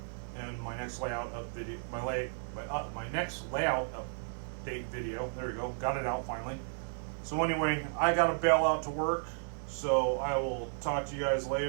in my next layout up video. My next layout update video. There we go. Got it out finally. So anyway, I got to bail out to work. So I will talk to you guys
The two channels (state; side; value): silent; left; digital silence